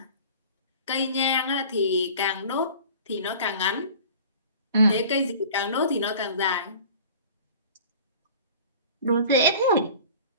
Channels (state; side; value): inverted; both; correlation -0.43